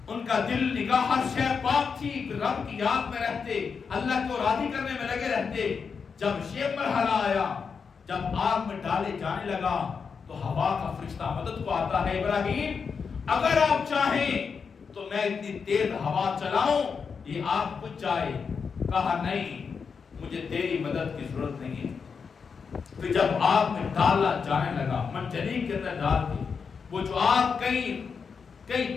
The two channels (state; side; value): quieter; right; 5.8 dB